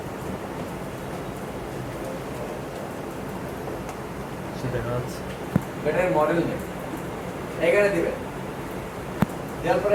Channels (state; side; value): identical; both; correlation 1.00